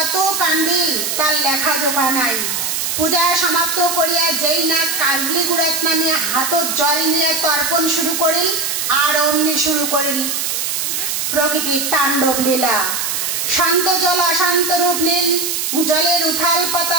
কান্দিল তার লেখা জোখা নাই। পূজা সমাপ্ত করিয়া যেই না কাজলিকুড়াত নামিয়া হাতত জল নিয়ে তর্পণ শুরু করিল, আর অমনি শুরু করিল প্রকৃতির তাণ্ডব লীলা। শান্ত জল অশান্ত রূপ নিল। জলের উথাল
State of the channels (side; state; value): right; noise; hiss, 1 dB below the sound